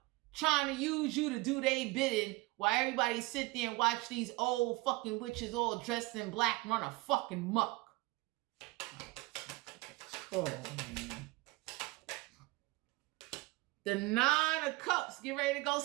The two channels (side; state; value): left; quieter; 23.2 dB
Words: Trying to use you to do their bidding while everybody sit there and watch these old fucking witches all dressed in black run a fucking muck. Oh, man. The Nine of Cups. Get ready to go